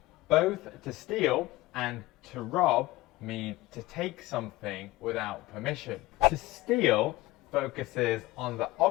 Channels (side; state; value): right; quieter; 18.7 dB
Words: Both to steal and to rob mean to take something without permission. To steal focuses on the